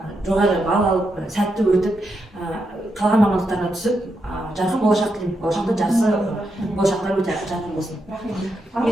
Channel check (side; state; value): both; normal; correlation 0.83